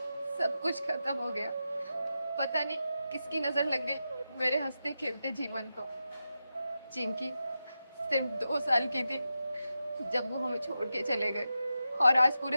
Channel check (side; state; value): both; inverted; correlation -0.90